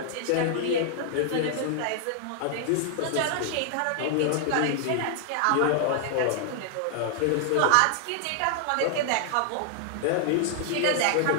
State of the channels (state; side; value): different; both; correlation 0.00